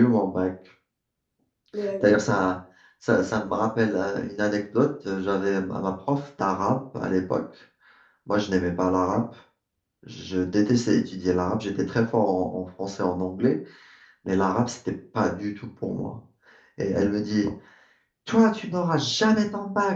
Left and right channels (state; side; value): identical; both; correlation 1.00